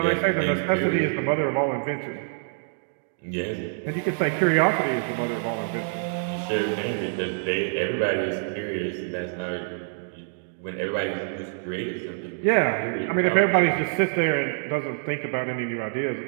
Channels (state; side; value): silent; left; digital silence